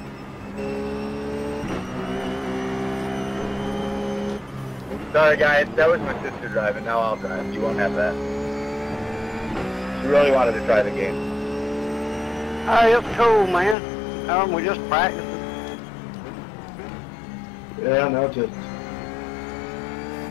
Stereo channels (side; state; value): right; drops out; at 13.8 s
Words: Sorry guys, that was my sister driving, now I'll drive. You won't have that. She really wanted to try the game. Hey, it's cool, man. We just practicing. Yeah, no, just.